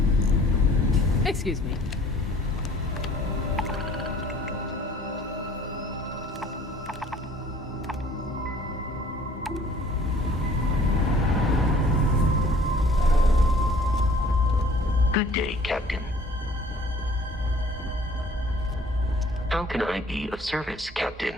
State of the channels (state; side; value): normal; both; correlation 0.54